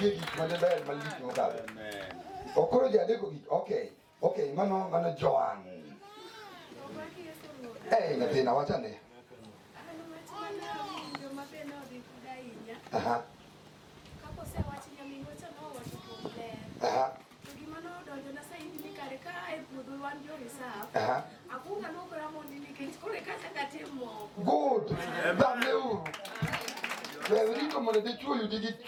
madebe maliki ngokabe. Amen. Okoro jadeko gi. Okay. Okay, mano Joan. Natina wachane. Aha. Aha. Good. Bamleu. Wewe ndio mwana Dichuo yudi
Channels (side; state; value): both; identical; correlation 1.00